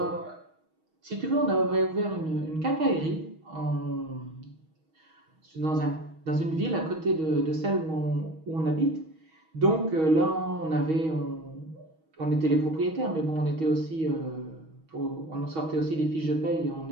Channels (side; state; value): left; late; 6.3 ms